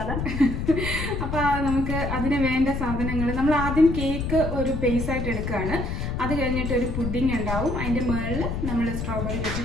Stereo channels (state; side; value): noise; left; rumble, 3 dB below the sound